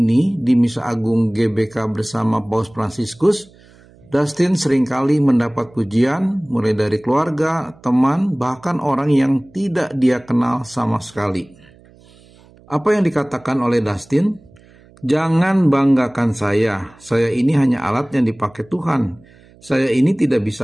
di Misa Agung GBK bersama Paus Fransiskus, Dustin seringkali mendapat pujian mulai dari keluarga, teman, bahkan orang yang tidak dia kenal sama sekali. Apa yang dikatakan oleh Dustin? Jangan banggakan saya ini hanya alat yang dipakai Tuhan. Saya ini tidak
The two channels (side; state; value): right; noise; hum, 27 dB below the sound